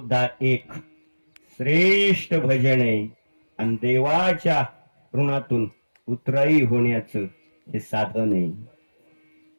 एक श्रेष्ठ भजन आहे, आणि देवाच्या ऋणातून उतराई होण्याचं हे साधन आहे.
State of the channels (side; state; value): both; inverted; correlation -1.00